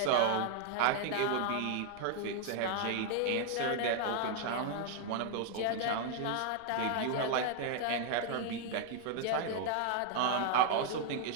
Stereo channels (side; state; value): both; different; correlation 0.00